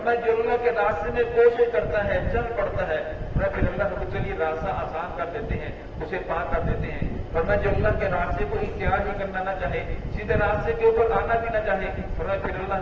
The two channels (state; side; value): identical; both; correlation 1.00